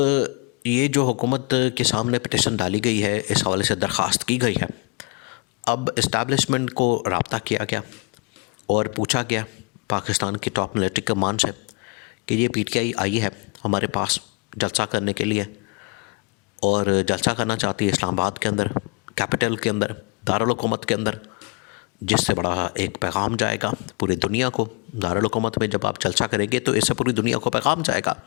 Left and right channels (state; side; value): quieter; right; 30.8 dB